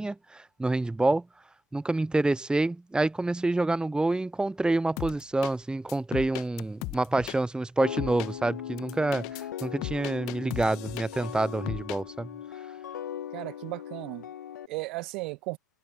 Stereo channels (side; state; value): both; normal; correlation 0.88